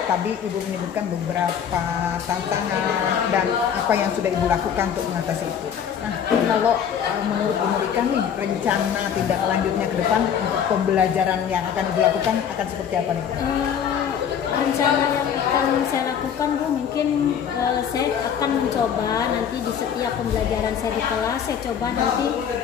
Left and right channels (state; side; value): quieter; right; 8.2 dB